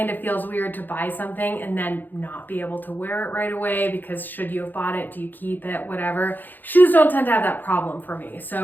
of feels weird to buy something and then not be able to wear it right away, because should you have bought it? Do you keep it? Whatever. Shoes don't tend to have that problem for me.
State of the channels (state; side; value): late; right; 0.088 ms